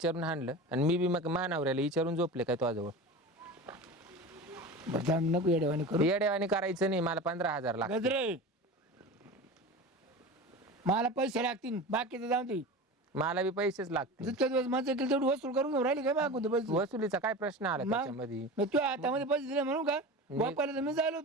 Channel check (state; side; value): normal; both; correlation 0.31